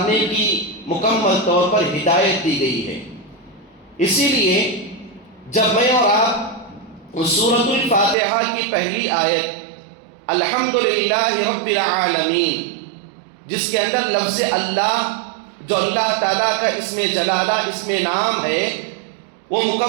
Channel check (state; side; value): drops out; left; at 8.2 s